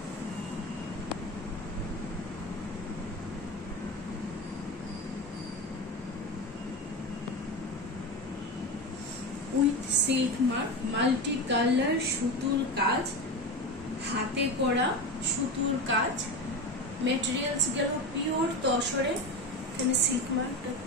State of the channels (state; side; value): normal; both; correlation 0.23